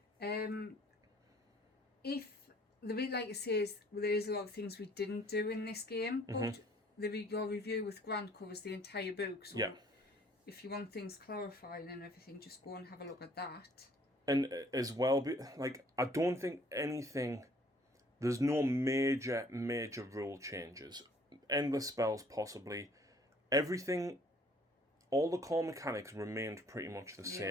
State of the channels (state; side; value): normal; both; correlation 0.58